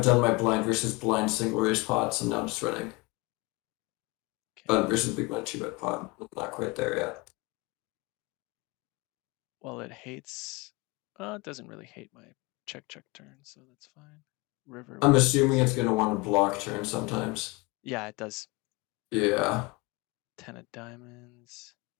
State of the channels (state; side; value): quieter; right; 25.0 dB